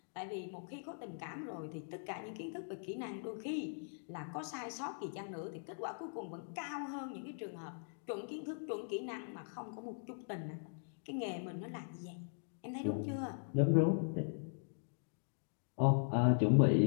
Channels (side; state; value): right; silent; digital silence